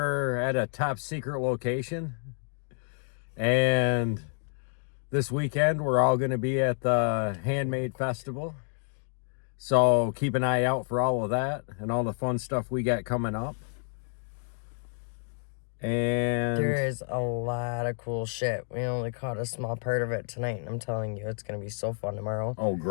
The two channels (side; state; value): right; silent; 58 dB below the other